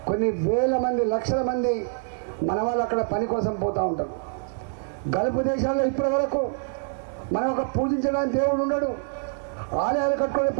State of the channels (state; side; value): silent; left; 61 dB below the other